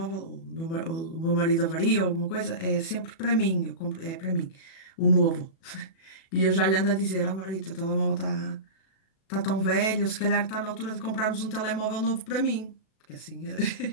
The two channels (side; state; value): right; late; 37 ms